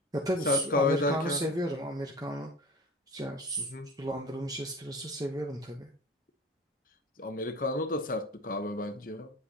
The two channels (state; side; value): normal; both; correlation 0.36